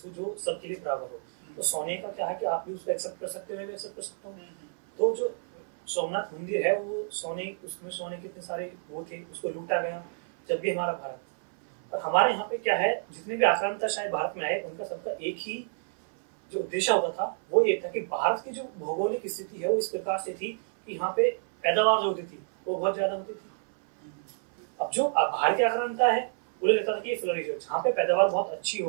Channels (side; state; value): left; silent; 58 dB below the other